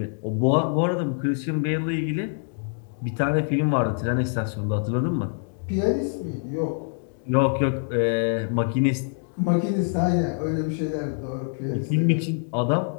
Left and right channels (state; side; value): silent; right; 61 dB below the other